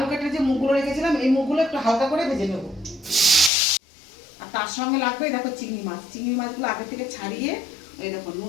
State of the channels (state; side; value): drops out; right; at 3.5 s